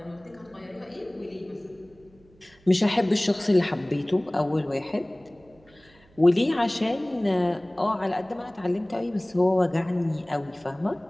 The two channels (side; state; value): right; noise; hum, 29 dB below the sound